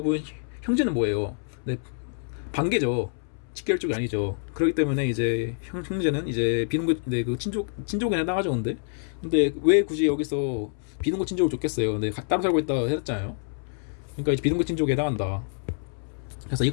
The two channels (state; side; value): silent; right; 60 dB below the other